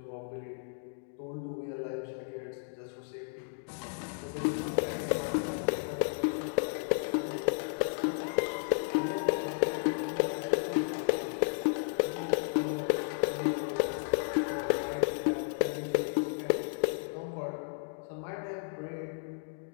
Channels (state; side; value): silent; right; digital silence